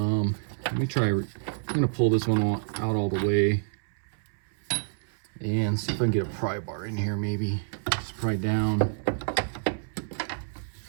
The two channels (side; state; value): left; silent; 58 dB below the other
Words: me try. I'm gonna pull this one out all the way and see if I can get a pry bar in here. Maybe just pry down.